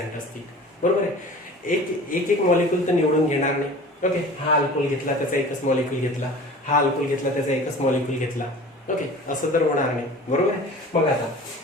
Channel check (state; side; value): normal; both; correlation 0.41